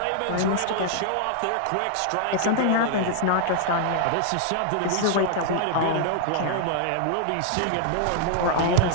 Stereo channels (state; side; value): different; both; correlation -0.01